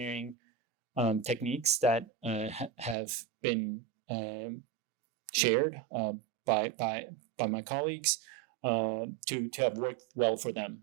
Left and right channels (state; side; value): drops out; left; at 3.0 s